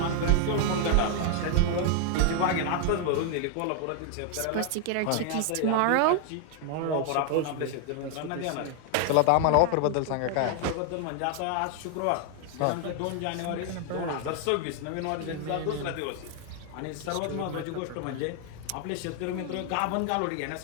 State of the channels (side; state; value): both; different; correlation 0.00